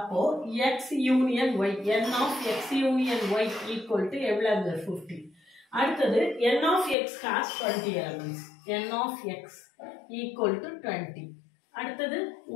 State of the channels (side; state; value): right; drops out; at 7.0 s